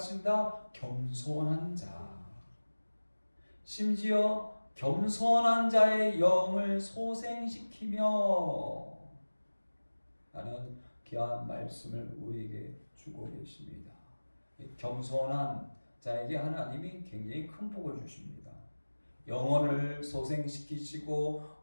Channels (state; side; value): inverted; both; correlation -1.00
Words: 겸손한 자. 심지어 겸손한 자의 영을 소생시키며 라는 귀한 말씀을 우리에게 주고 계십니다. 겸손한 자에게 하나님이 굉장히 큰 복을 주십니다. 영혼을 소생시키시고